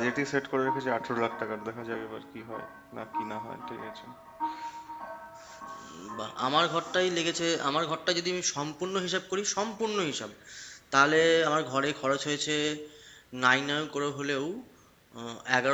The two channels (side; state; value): both; identical; correlation 1.00